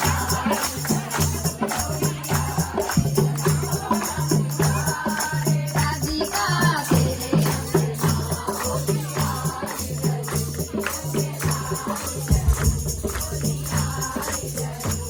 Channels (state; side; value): identical; both; correlation 1.00